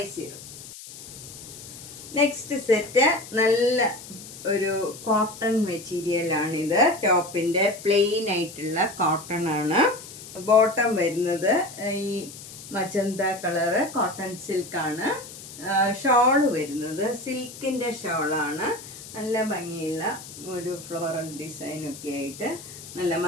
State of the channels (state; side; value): noise; left; hiss, 15 dB below the sound